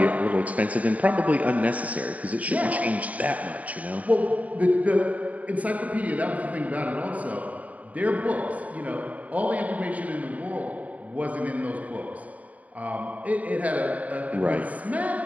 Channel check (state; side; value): late; left; 0.070 ms